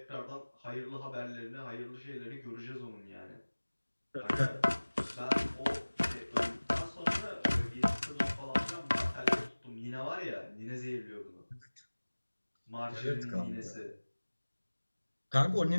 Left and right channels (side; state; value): both; inverted; correlation -1.00